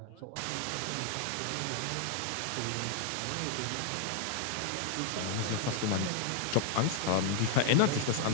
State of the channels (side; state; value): both; different; correlation 0.00